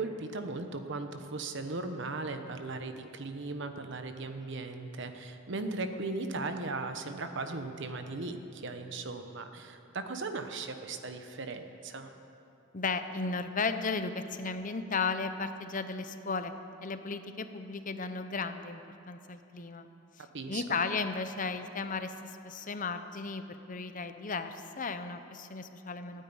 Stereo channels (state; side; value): normal; both; correlation 0.08